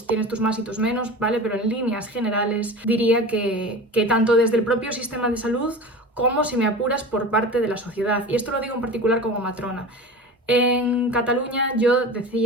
tienes tus más y tus menos, ¿vale? Pero en líneas generales diría que tanto desde el propio sistema de salud como, si me apuras, por parte de la sociedad. Y esto lo digo en particular como matrona. En Cataluña yo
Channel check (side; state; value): both; normal; correlation 0.33